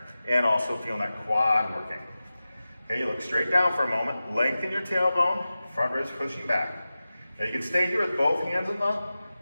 and also feeling that quad working. Okay, you look straight down for a moment, lengthen your tailbone, front ribs pushing back. Now you can stay here with both hands on the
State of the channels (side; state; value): both; inverted; correlation -0.95